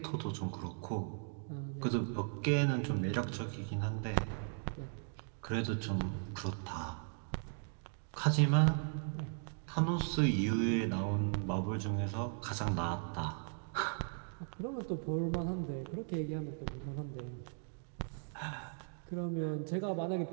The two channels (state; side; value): silent; left; 53 dB below the other